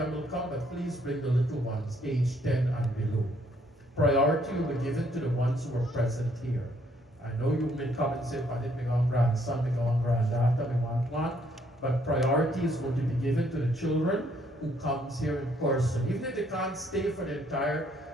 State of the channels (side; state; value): both; normal; correlation 0.68